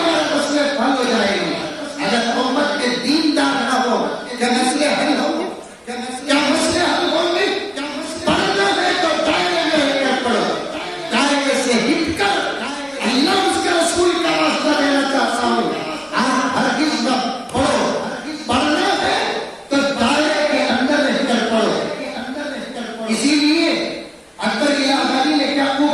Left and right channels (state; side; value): identical; both; correlation 1.00